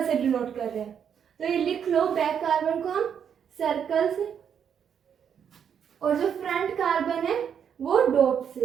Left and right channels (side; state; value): left; quieter; 8.0 dB